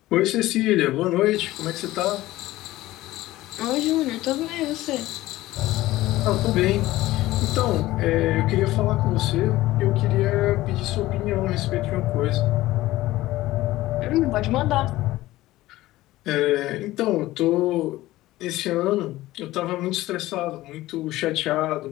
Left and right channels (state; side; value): quieter; right; 16.9 dB